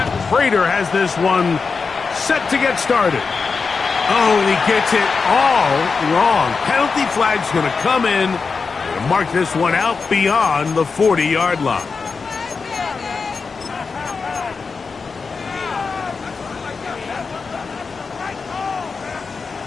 Prater has this one set to get started. Oh, and he gets it all wrong. Penalty flag's going to come in and mark this one out beyond the 40-yard line.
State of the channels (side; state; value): right; quieter; 4.9 dB